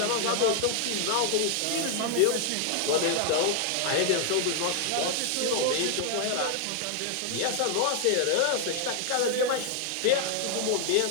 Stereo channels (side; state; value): both; different; correlation 0.00